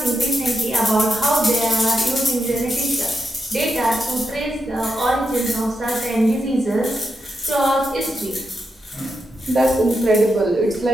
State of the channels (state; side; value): normal; both; correlation 0.85